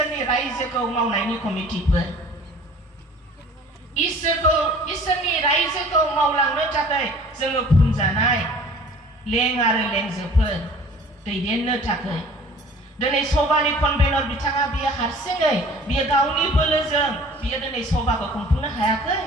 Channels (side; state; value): both; normal; correlation 0.48